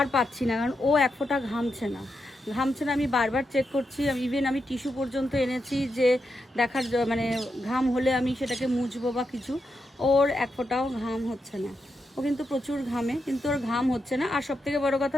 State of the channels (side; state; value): both; normal; correlation 0.85